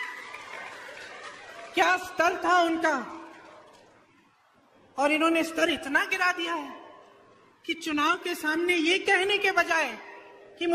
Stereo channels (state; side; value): identical; both; correlation 1.00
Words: क्या स्तर था उनका, और इन्होंने स्तर इतना गिरा दिया है कि चुनाव के सामने ये कहने के बजाय कि